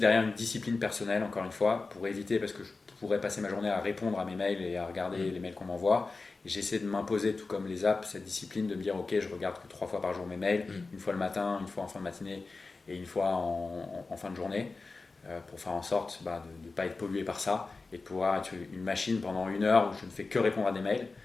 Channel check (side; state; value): right; quieter; 3.9 dB